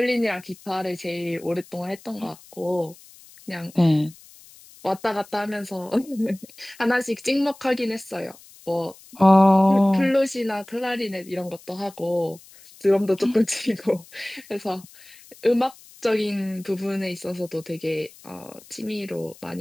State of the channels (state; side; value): noise; left; hiss, 23 dB below the sound